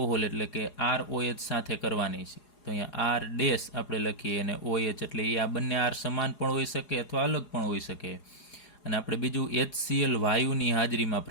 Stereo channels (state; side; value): late; right; 4.8 ms